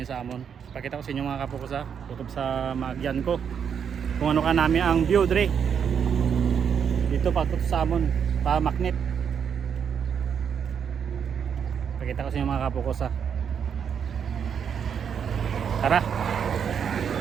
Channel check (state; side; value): quieter; left; 7.5 dB